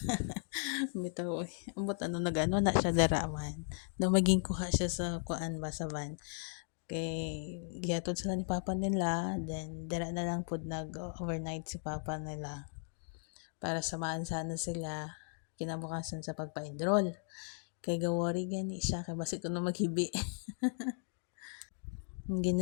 Bitaw, ambot ano nagano na siya daraman. Na maging kuha siya sa kuan ba sa van. Kay gihatod sila ni papa nila, then dara na lang pud nag-overnight si papa nila para samahan sana sila kinabukasan sa pagpa-enroll. Kay gawari gani siya kay basi kuno maghibi. Ang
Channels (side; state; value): right; silent; 53 dB below the other